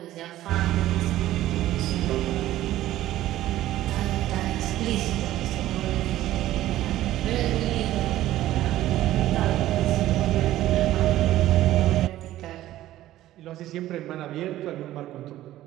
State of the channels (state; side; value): quieter; left; 14.4 dB